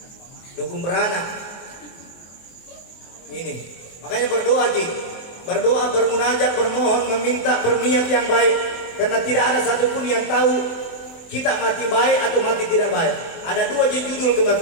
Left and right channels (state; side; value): late; right; 23 ms